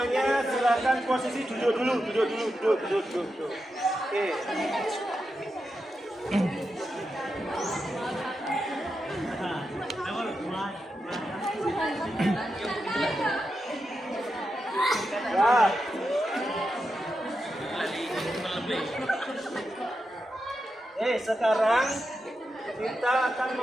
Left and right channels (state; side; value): normal; both; correlation 0.88